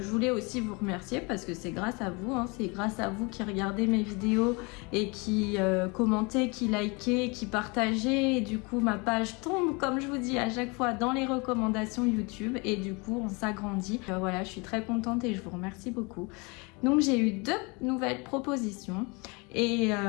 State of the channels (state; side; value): quieter; right; 29.0 dB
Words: voulais aussi vous remercier parce que c'est grâce à vous, hein, c'est grâce à vous qui regardez mes vidéos et qui commentez, qui likez, qui partagez, et du coup ma page tombe, comme je vous dis à chaque fois, dans les recommandations YouTube et du coup on s'agrandit. Voilà, je suis très contente et je vous remercie beaucoup. Donc j'ai eu 2 nouvelles propositions et